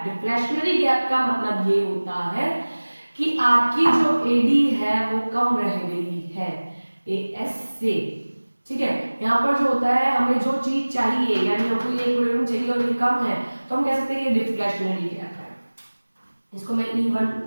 Deflationary gap का मतलब ये होता है कि आपकी जो एडी है वो कम रह गई है एएस से, ठीक है। यहाँ पर जो होता है, हमें जो चीज चाहिए, यानी हमको ये इक्विलिब्रियम चाहिए और ये कम है, तो हम कह सकते हैं ये डिफ्लेशनरी गैप है। इसको मैं E1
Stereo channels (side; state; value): both; inverted; correlation -1.00